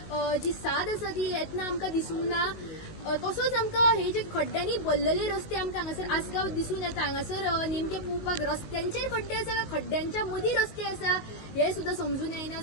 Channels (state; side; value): late; right; 19 ms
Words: जी साद आसा ती येतना आमकां दिसूंक ना। तसोच आमकां हे जे खड्ड्यांनी भरलेले रस्ते आमकां हांगासर आसगांव दिसून येता, हांगासर नेमके पळोवपाक रस्त्यांचेर खड्डे आसा काय खड्ड्यांच्या मदीं रस्ते आसा हे सुद्दां समजून येना।